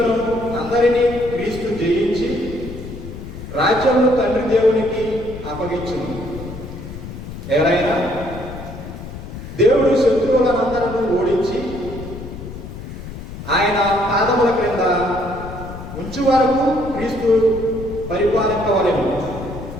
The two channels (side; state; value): left; noise; rumble, 11 dB below the sound